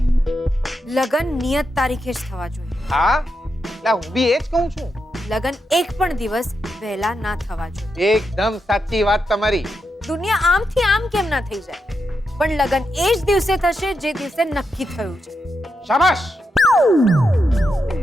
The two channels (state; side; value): normal; both; correlation 0.85